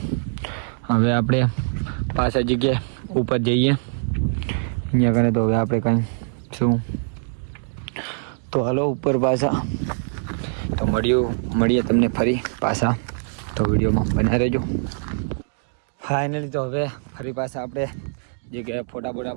હવે આપણે પાછા જગ્યાએ ઉપર જઈએ અહીંયા કને. તો હવે આપણે કાંઈ શું તો હાલો ઉપર પાછા તો મળીએ તમને ફરી પાછા. તો વિડીયોમાં બના રહેજો. ફાઇનલી તો હવે ફરી પાછા આપણે જગ્યાએ ફોટા બોટા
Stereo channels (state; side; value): silent; left; digital silence